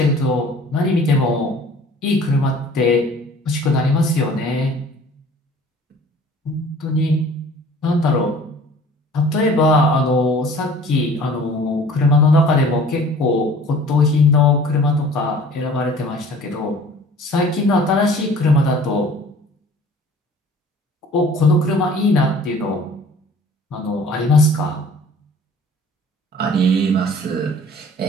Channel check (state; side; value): normal; both; correlation 0.49